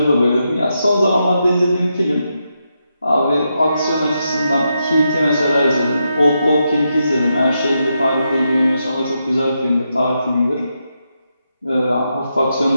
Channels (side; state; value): both; inverted; correlation -0.84